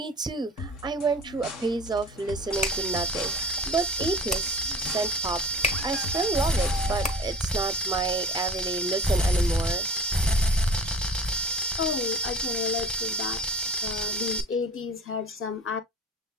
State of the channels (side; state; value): both; normal; correlation 0.45